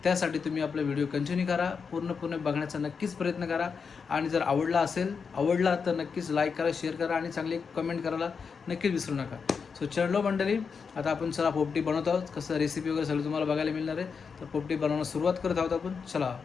त्यासाठी तुम्ही आपला व्हिडिओ कंटिन्यू करा पूर्णपणे बघण्याचा नक्कीच प्रयत्न करा आणि जर आवडला तर नक्कीच लाईक करा शेअर करा आणि चांगली कमेंट करायला नक्कीच विसरू नका सो चढलो मंडळी आता आपण चला पोपटी बनवत आहोत कसं रेसिपी वगैरे सगळं तुम्हाला बघायला मिळणार आहे तर पोपटी बनवण्यास सुरुवात करत आहोत आपण चला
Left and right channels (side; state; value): right; quieter; 5.7 dB